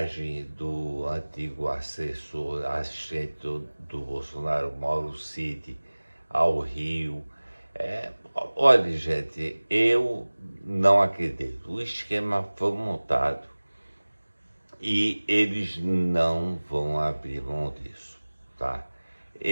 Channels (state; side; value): inverted; both; correlation -1.00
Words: do antigo assistente do Bolsonaro, Mauro Cid, ao Rio. Olha, gente, eu não acredito. O esquema foi montado e eles não vão abrir mão disso, tá?